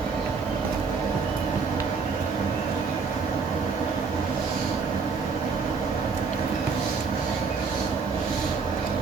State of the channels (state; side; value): quieter; left; 5.1 dB